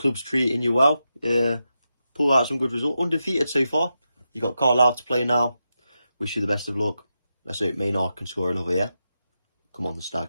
treating you well. Pull out some good result. Undefeated so far. You got Carlisle to play now. Wish you the best of luck. Let's hope Maynard can score another, yeah? Come on, the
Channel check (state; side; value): inverted; both; correlation -0.88